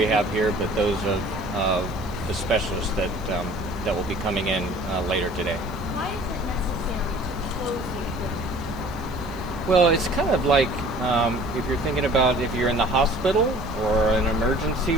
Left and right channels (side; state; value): left; noise; hiss, 24 dB below the sound